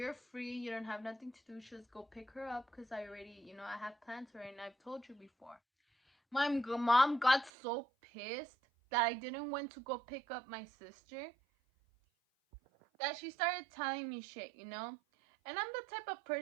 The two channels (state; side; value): drops out; left; at 7.5 s